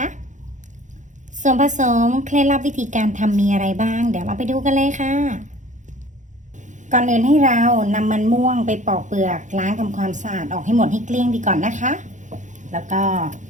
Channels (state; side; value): late; left; 0.36 ms